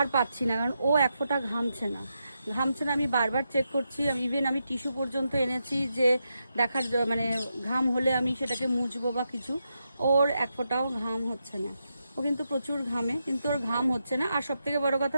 পাচ্ছি না, কারণ ও এক ফোঁটা ঘামছে না। আমি বারবার চেক করছি, আমি টিস্যু পর্যন্ত এনেছি যে দেখার মানে ঘাম হলে আমি সেটাকে মুছবো বা কিছু। ওর এক ফোঁটাও ঘাম হচ্ছে না। ও কিন্তু প্রচুর ঘামে, কিন্তু ওর ঘাম হচ্ছে না। আর সব থেকে বড় কথা,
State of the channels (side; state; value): both; inverted; correlation -0.85